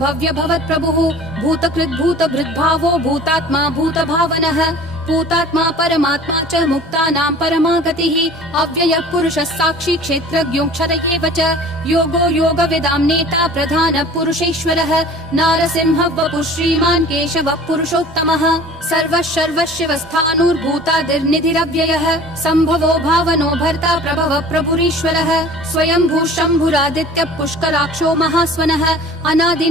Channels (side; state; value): both; normal; correlation 0.45